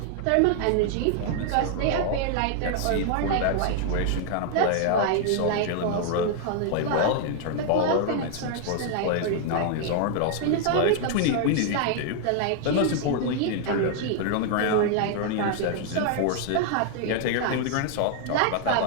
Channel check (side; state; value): both; different; correlation 0.00